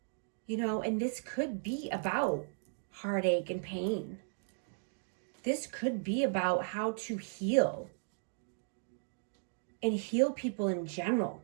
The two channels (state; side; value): silent; left; digital silence